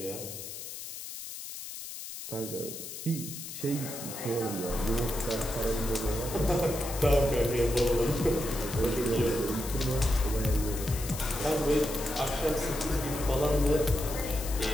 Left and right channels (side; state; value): left; noise; hiss, 9 dB below the sound